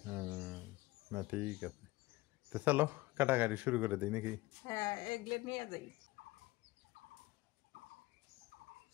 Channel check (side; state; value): right; quieter; 20.1 dB